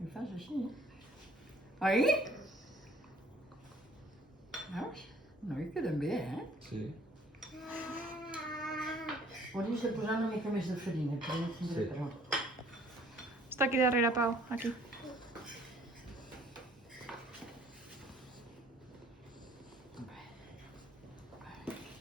I fas així. Oi? Veus? No, hi queden bé, Sí. Hauries de posar una mica més de farina, que no tindré Sí. prou. Està aquí darrere, Pau. Aquí.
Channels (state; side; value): normal; both; correlation 0.57